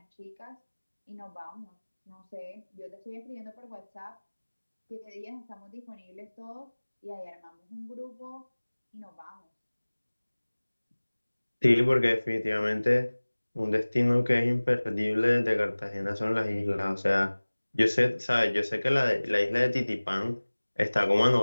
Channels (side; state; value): both; inverted; correlation -1.00